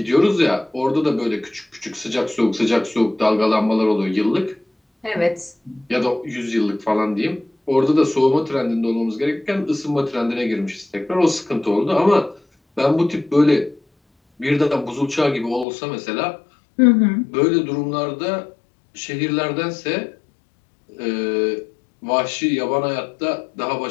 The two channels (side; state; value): right; drops out; at 15.7 s